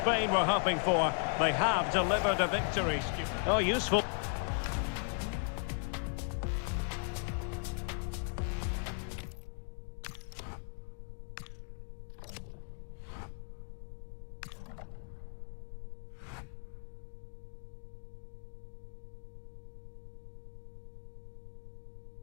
were hoping for. They have delivered a victory. Oh, useful.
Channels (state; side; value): silent; right; 53 dB below the other